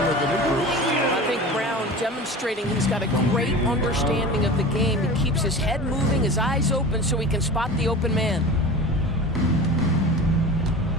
with the new group. I think Brown demonstrating he's got a great understanding of the game. He keeps his head moving, his eyes open so he can spot the open man.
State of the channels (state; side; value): normal; both; correlation 0.34